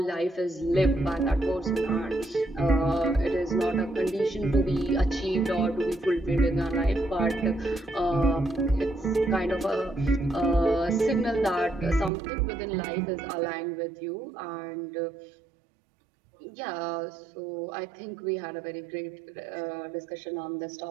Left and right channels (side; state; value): left; drops out; at 12.1 s